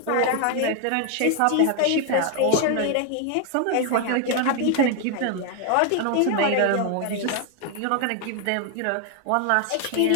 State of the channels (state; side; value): different; both; correlation 0.01